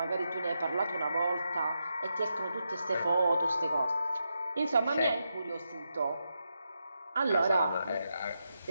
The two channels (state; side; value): inverted; both; correlation -0.85